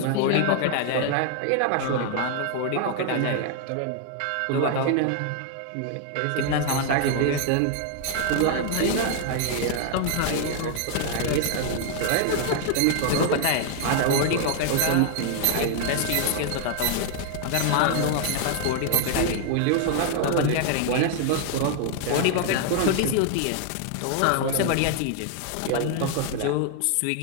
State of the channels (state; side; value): different; both; correlation 0.00